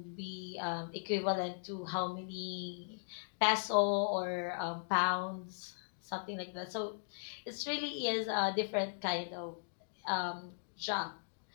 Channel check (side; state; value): right; silent; digital silence